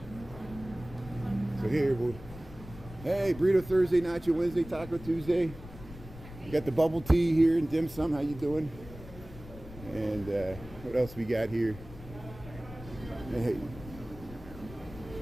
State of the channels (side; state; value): left; noise; rumble, 15 dB below the sound